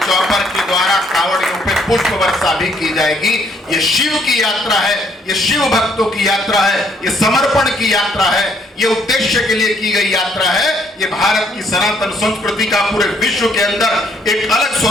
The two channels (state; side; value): normal; both; correlation 0.67